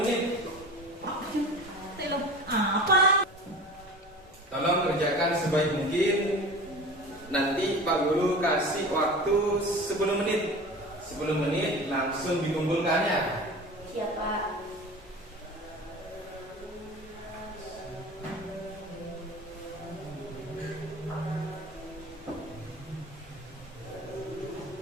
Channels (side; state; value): both; normal; correlation 0.36